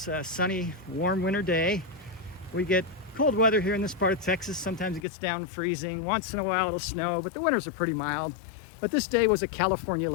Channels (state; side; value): drops out; right; at 5.1 s